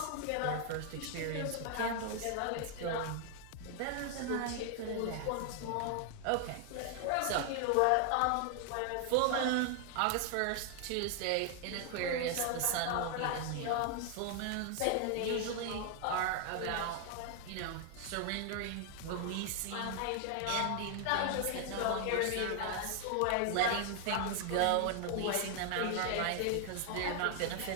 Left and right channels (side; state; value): both; different; correlation 0.00